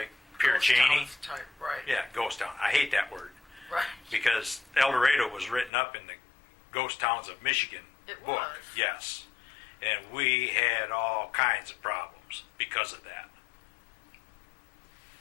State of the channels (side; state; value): right; drops out; at 5.7 s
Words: Pierre Ghost Cheney. towns type, right. Yeah, ghost town. I hate that word. Right. Because El Dorado was written up in the Ghost Towns of Michigan It book. was. Yes. And we had all kinds of problems because of that.